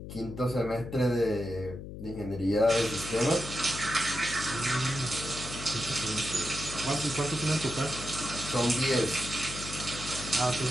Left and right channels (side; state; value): left; noise; hum, 10 dB below the sound